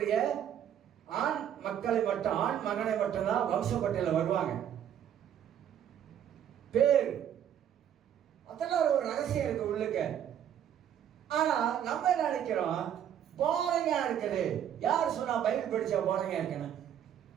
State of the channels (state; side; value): quieter; left; 9.8 dB